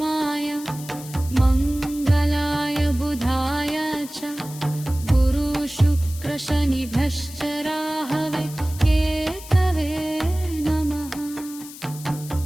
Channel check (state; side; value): noise; left; hiss, 15 dB below the sound